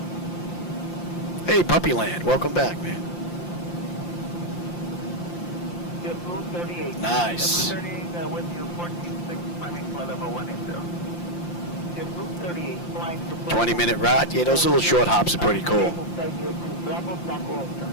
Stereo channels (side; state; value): right; late; 5.8 ms